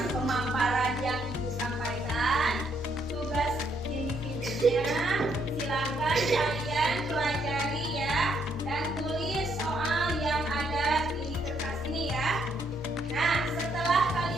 pemaparan yang Ibu sampaikan, tugas individunya silakan kalian pelajari ya, dan tulis soal yang ada di kertas ini ya. Nah, setelah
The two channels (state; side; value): normal; both; correlation 0.72